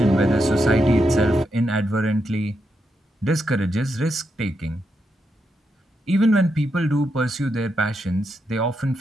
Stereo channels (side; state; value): both; normal; correlation 0.83